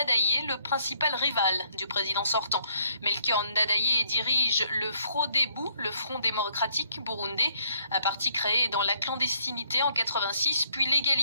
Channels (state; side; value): inverted; both; correlation -0.66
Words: le principal rival du président sortant. Melchior Ndadaye dirige le Frodebu, le Front démocratique burundais, un parti créé dans la clandestinité en 86, puis